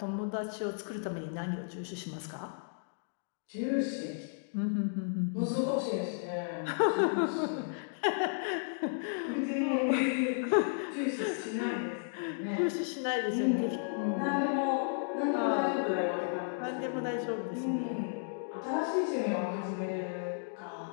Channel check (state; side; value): silent; right; digital silence